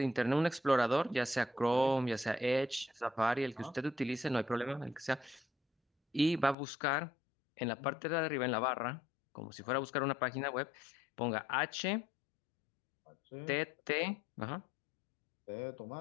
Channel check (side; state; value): right; drops out; at 6.6 s